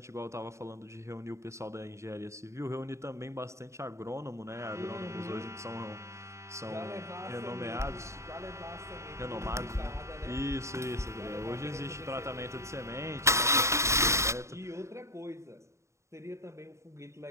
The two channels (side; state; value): left; late; 0.14 ms